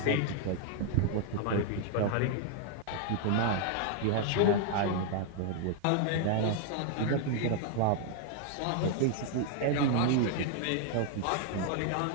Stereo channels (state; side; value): different; both; correlation 0.00